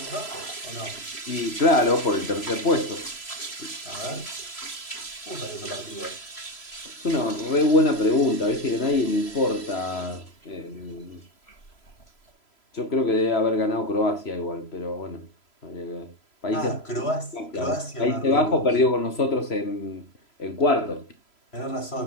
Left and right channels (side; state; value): right; late; 3.0 ms